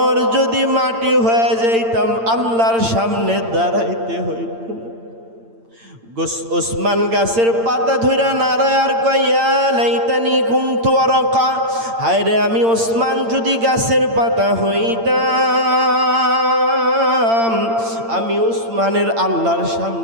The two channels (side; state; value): left; late; 8.8 ms